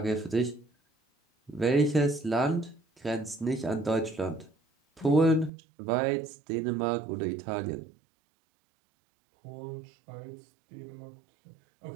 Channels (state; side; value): drops out; left; at 5.5 s